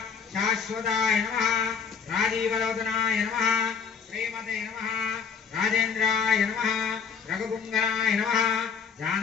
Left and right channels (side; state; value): right; quieter; 6.4 dB